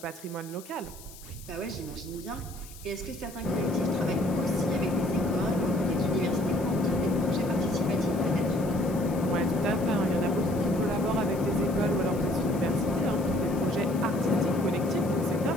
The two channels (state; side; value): noise; left; hiss, 18 dB below the sound